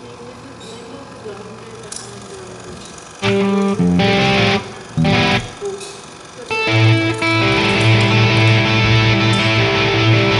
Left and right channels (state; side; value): identical; both; correlation 1.00